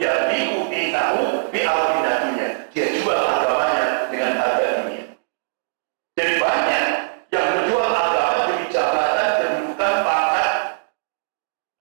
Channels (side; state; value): left; silent; digital silence